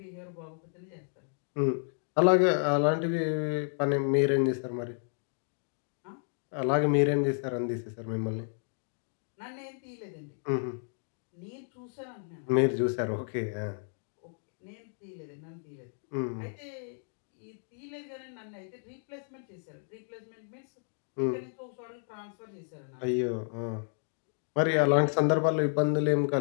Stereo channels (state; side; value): silent; right; 56 dB below the other